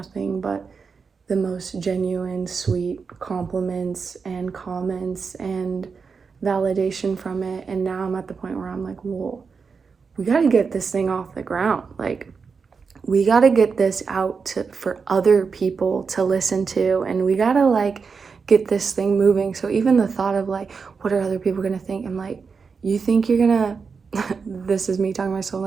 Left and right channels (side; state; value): left; quieter; 5.3 dB